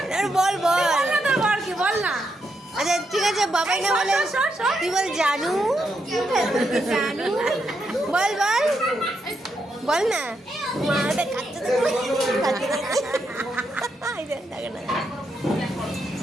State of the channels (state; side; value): normal; both; correlation 0.81